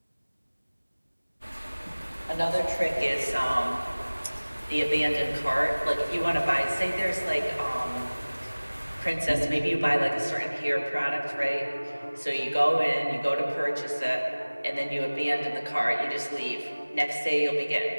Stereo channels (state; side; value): inverted; both; correlation -1.00